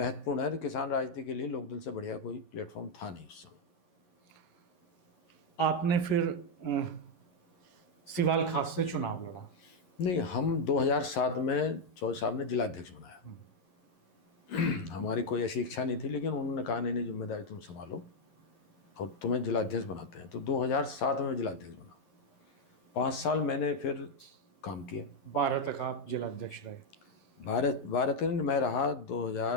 है। किसान राजनीति के लिए लोकदल से बढ़िया कोई प्लेटफॉर्म था नहीं उस समय। आपने फिर सिवाल खास से चुनाव लड़ा? नहीं, हम 2007 में चौधरी साहब ने जिलाध्यक्ष बनाया। हमारी कोई ऐसी इच्छा नहीं थी, लेकिन उन्होंने कहा नहीं जिम्मेदारी तुम संभालो और तुम्हें जिलाध्यक्ष बनाते हैं, तो 2007 में जिलाध्यक्ष बना। 5 साल मैंने फिर काम किया। 12 तक आप जिलाध्यक्ष रहे? 12 तक मैं रहा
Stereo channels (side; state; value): right; late; 11 ms